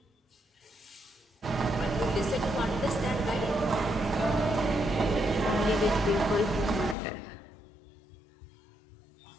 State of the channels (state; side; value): drops out; right; at 7.0 s